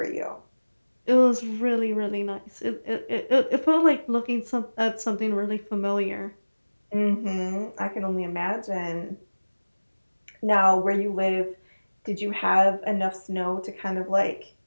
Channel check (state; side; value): inverted; both; correlation -1.00